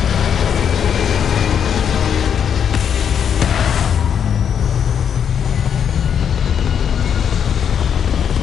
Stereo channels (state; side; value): quieter; right; 8.1 dB